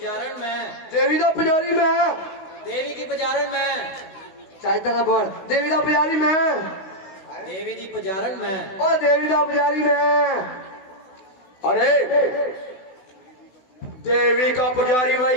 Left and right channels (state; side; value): late; right; 16 ms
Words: में, देवी दा पुजारी मैं, देवी की पुजारण में, चाहता ना बोल, देवी दा पुजारी मैं, देवी जी पुजारण में। ओ देवी दा पुजारी मैं। अरे देवी का पुजारी